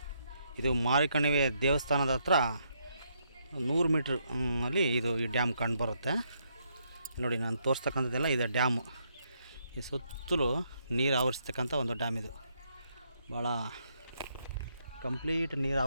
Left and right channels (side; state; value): both; inverted; correlation -0.75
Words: ಇದು ಮಾರಿಕಣಿವೆ ದೇವಸ್ಥಾನದ ಹತ್ರ 100 ಮೀಟ್ರ್ ಅಲ್ಲಿ ಈ ಡ್ಯಾಮ್ ಕಂಡುಬರುತ್ತೆ. ನೋಡಿ ನಾನು ತೋರಿಸ್ತಕ್ಕಂಥದ್ದೆಲ್ಲ ಇದು ಡ್ಯಾಮು. ಈ ಸುತ್ತಲೂ ನೀರು ಆವರಿಸ್ತಕ್ಕಂಥ ಒಂದು ಡ್ಯಾಮ್ ಇದು. ಭಾಳ ಕಂಪ್ಲೀಟ್ ನೀರು